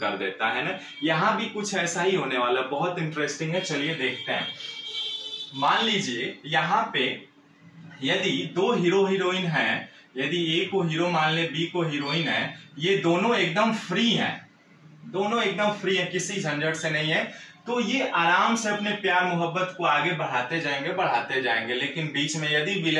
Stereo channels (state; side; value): identical; both; correlation 1.00